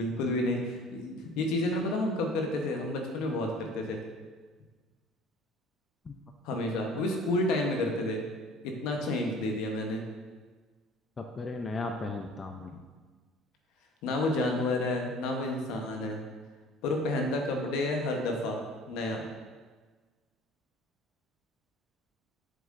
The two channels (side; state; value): both; normal; correlation 0.47